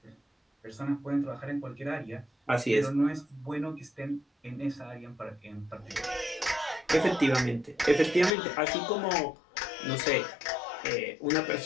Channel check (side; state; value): right; drops out; at 8.3 s